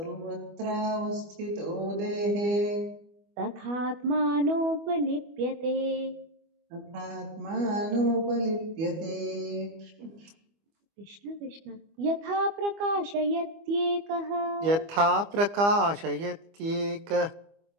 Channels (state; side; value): late; left; 25 ms